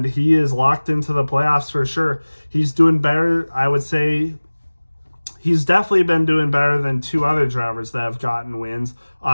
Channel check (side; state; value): both; inverted; correlation -1.00